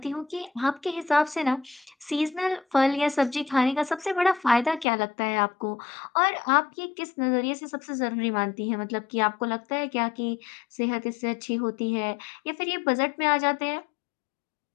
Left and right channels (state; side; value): drops out; right; at 4.9 s